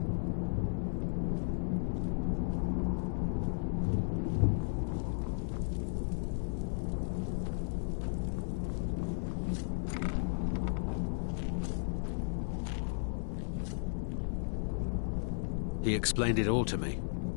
He explained it all to me.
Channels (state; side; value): silent; right; 55 dB below the other